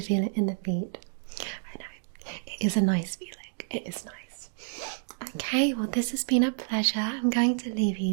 it in the feet. I know, it is a nice feeling, it is nice. Okay, well, this has been a pleasure. I'm going to leave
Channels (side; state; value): left; silent; 58 dB below the other